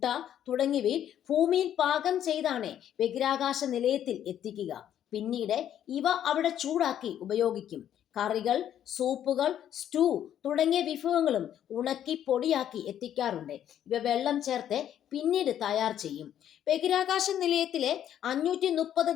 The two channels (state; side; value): quieter; right; 10.5 dB